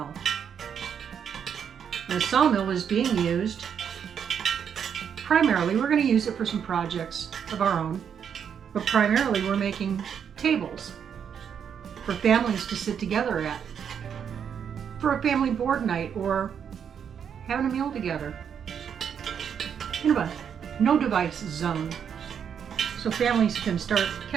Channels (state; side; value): quieter; left; 7.8 dB